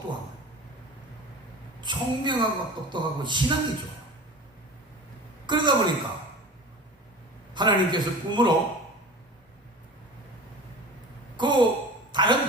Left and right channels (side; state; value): both; normal; correlation 0.37